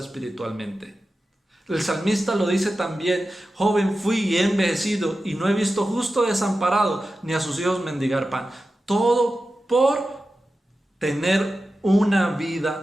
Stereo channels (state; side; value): normal; both; correlation 0.93